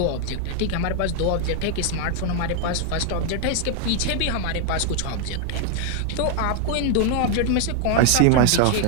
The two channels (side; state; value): both; different; correlation 0.01